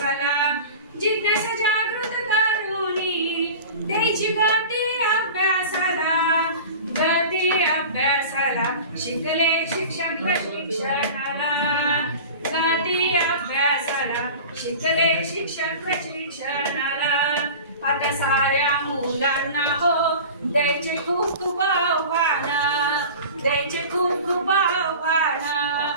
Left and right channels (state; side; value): inverted; both; correlation -0.36